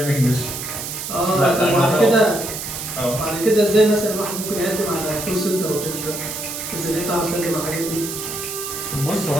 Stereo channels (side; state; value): right; noise; hiss, 6 dB below the sound